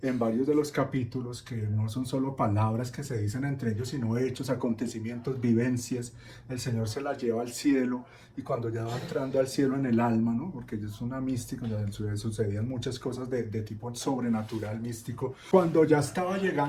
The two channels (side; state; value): both; identical; correlation 1.00